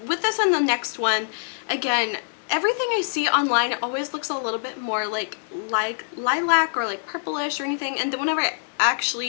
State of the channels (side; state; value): right; silent; digital silence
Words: with this and the next one, again, everything I see online always looks a little bit more like lilac or like purplish or anything, and then whenever I